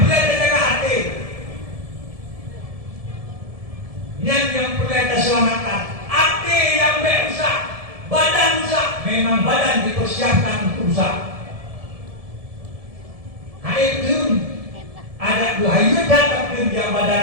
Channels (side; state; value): left; late; 1.7 ms